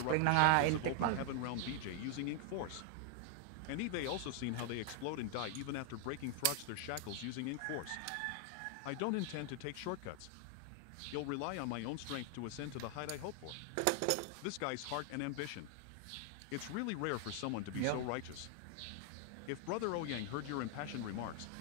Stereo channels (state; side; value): different; both; correlation 0.00